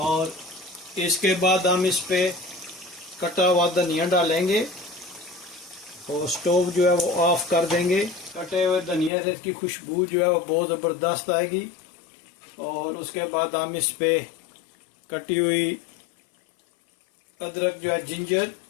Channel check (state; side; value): drops out; right; at 9.1 s